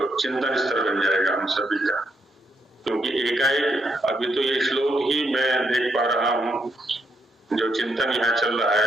चिंतन स्तर बन जाएगा हम सभी का। क्योंकि एकाएक अभी तो ये श्लोक ही मैं देख पा रहा हूँ, जो चिंतन यहाँ चल रहा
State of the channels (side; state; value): both; normal; correlation 0.77